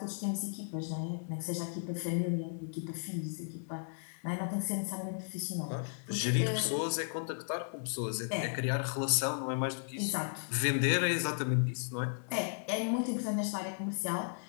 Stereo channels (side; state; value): right; silent; digital silence